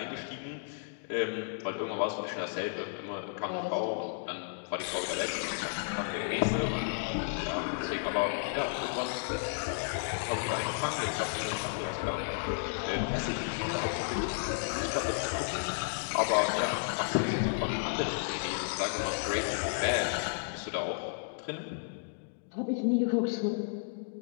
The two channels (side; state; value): right; silent; digital silence